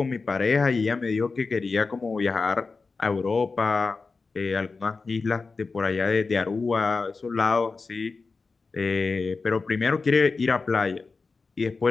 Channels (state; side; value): quieter; right; 4.3 dB